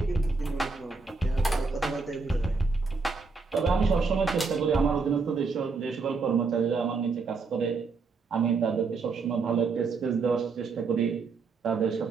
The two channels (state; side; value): quieter; left; 4.5 dB